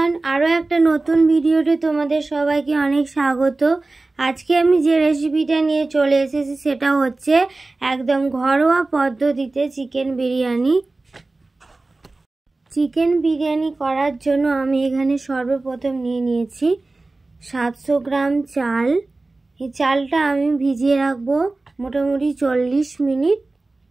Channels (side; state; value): left; quieter; 3.2 dB